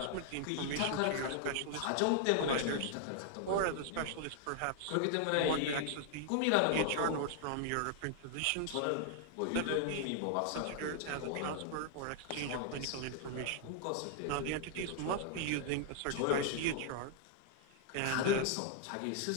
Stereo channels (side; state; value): both; different; correlation 0.00